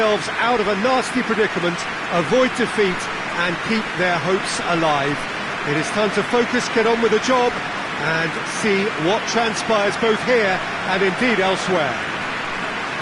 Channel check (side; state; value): both; identical; correlation 1.00